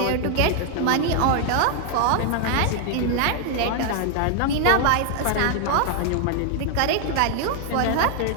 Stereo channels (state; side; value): different; both; correlation 0.00